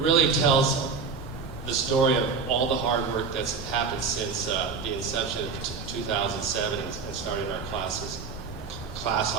really tells the story of all the hard work that's happened since the inception of 2007 and starting our class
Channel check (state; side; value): quieter; left; 5.1 dB